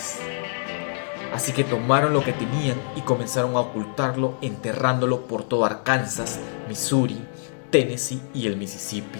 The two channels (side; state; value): right; silent; digital silence